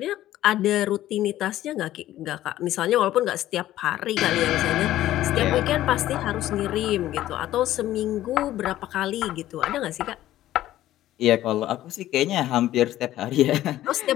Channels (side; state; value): right; quieter; 13.9 dB